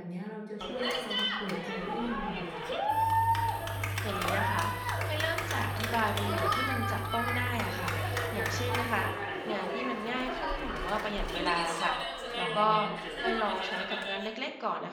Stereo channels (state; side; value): identical; both; correlation 1.00